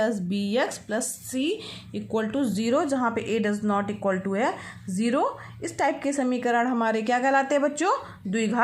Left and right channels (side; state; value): both; identical; correlation 1.00